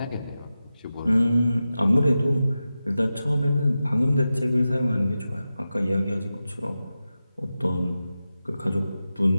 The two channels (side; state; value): both; inverted; correlation -0.93